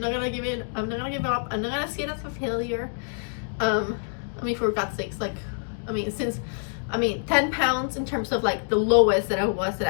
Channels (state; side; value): silent; right; digital silence